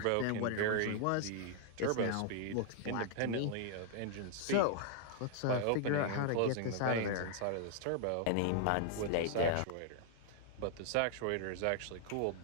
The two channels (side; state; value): both; different; correlation 0.00